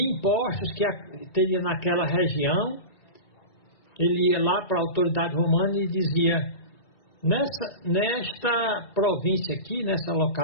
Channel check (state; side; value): late; right; 1.8 ms